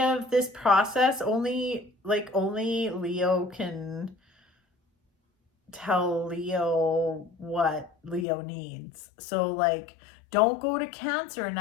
this process, only Leo can tell Leo what Leo needs. So like don't go to Cancer and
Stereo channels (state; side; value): drops out; right; at 8.2 s